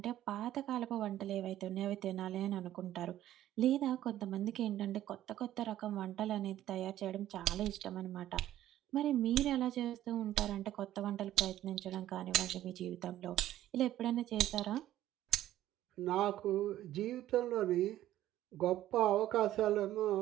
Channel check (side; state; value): left; quieter; 13.4 dB